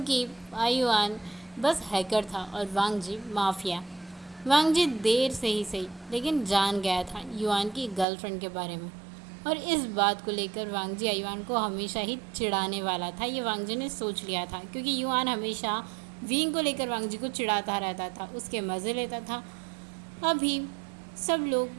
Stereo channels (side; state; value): left; drops out; at 8.1 s